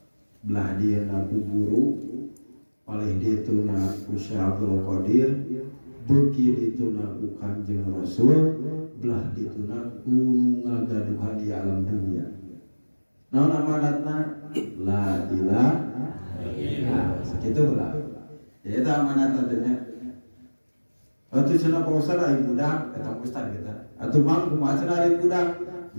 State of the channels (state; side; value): inverted; both; correlation -1.00